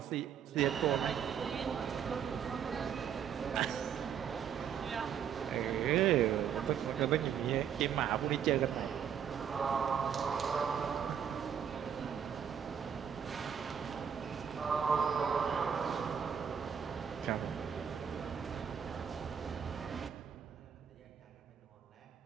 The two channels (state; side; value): quieter; left; 8.1 dB